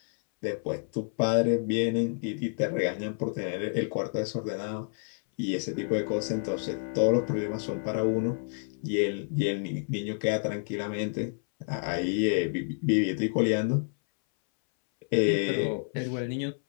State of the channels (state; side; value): silent; right; 58 dB below the other